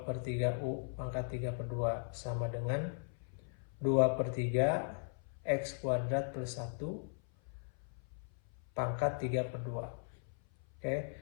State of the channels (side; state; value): right; silent; 53 dB below the other